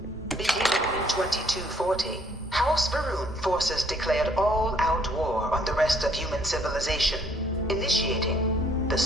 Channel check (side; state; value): both; normal; correlation 0.64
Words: Beginning in 2240, House Varun forces declared all-out war on the rest of human civilization, initiating the